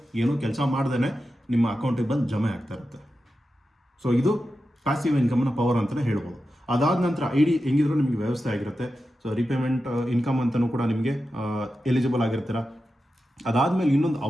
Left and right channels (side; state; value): both; normal; correlation 0.91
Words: ಏನೂ ಕೆಲಸ ಮಾಡ್ದೇ ನಿಮ್ಮ ಅಕೌಂಟಿಗೆ ಬಂದು ಜಮೆ ಆಗ್ತಾ ಇರುತ್ತೆ. ಸೊ ಇದು ಪ್ಯಾಸಿವ್ ಇನ್ಕಮ್ನ ಪವರ್ ಅಂತಲೇ ಹೇಳ್ಬೋದು. ಅದಾದ ನಂತರ ID ಹೆಂಗಿದ್ರು ನಿಮಗೆ ವ್ಯವಸ್ಥೆ ಆಗಿರುತ್ತೆ. ಸೊ ರೀಪೇಮೆಂಟ್ ಇನ್ಕಮ್ ಅಂತಲೂ ಕೂಡ ನಿಮಗೆ ಎಲಿಜಿಬಲ್ ಆಗಿರ್ತೀರ. ಅದಾದಮೇಲೆ ಇನ್ನೊಂದು